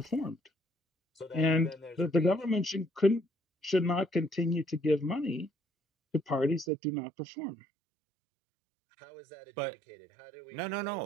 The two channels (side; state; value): left; drops out; at 6.7 s